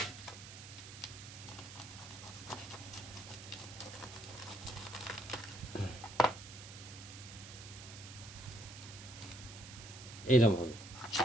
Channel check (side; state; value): right; noise; hiss, 13 dB below the sound